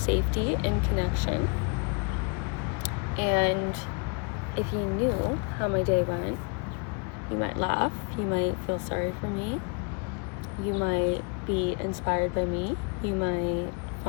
in connection. And if you knew how my day went, you might laugh, you might feel sorry for me, you might be inspired by me, you might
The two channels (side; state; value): right; quieter; 34.3 dB